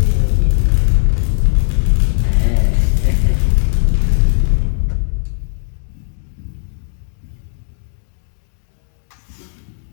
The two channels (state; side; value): silent; right; digital silence